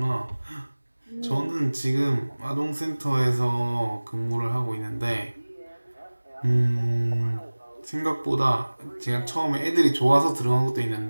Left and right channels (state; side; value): inverted; both; correlation -1.00